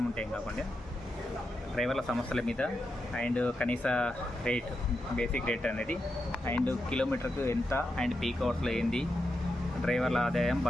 ఉంటే ఏం కాకుండా డ్రైవర్ల సమస్యల మీద అండ్ కనీస రేట్, బేసిక్ రేట్ అనేది అండ్ కిలోమీటర్కు ఎంత అండ్ పీక్ అవర్స్లో ఏంది, డ్రైవర్ల ఆదాయం,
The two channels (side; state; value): both; normal; correlation 0.87